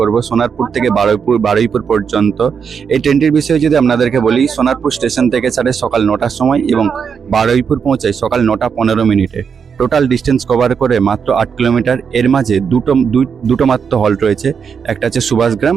করব সোনারপুর থেকে বারুইপুর পর্যন্ত। এই ট্রেনটির বিষয়ে যদি আপনাদেরকে বলি, সোনারপুর স্টেশন থেকে ছাড়ে সকাল 9টার সময় এবং বারুইপুর পৌঁছায় সকাল 9টা 15 মিনিটে। টোটাল ডিস্টেন্স কভার করে মাত্র 8 কিলোমিটার। এর মাঝে দুটো মাত্র হল্ট রয়েছে, একটা হচ্ছে সুভাষগ্রাম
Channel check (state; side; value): quieter; left; 6.6 dB